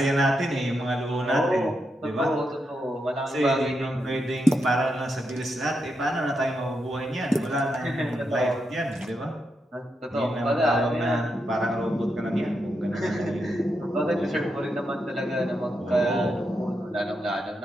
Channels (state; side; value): normal; both; correlation 0.84